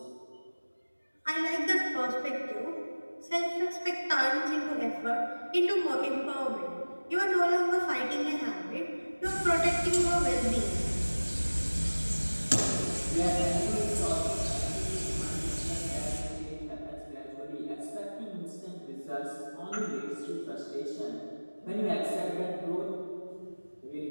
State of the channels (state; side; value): inverted; both; correlation -1.00